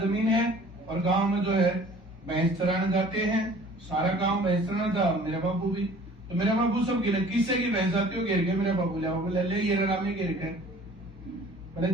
है और गांव में जो है भैंस चराने जाते हैं सारा गांव भैंस चराना था मेरा बाबू भी तो मेरा बाबू सब गिर किससे की भैंस आती हो गिर के मेरा बाबू ले ये राम में गिर कर बोले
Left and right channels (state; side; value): normal; both; correlation 0.50